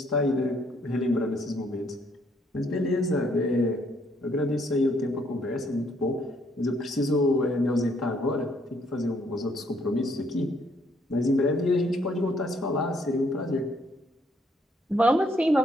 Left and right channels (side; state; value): both; normal; correlation 0.69